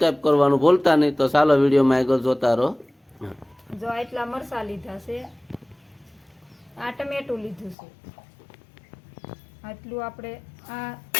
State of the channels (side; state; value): right; drops out; at 7.8 s